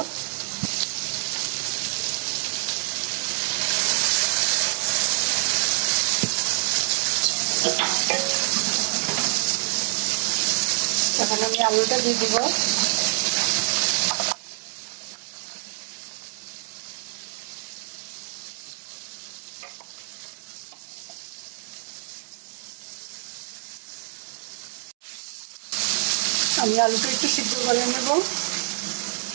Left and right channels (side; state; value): left; silent; 55 dB below the other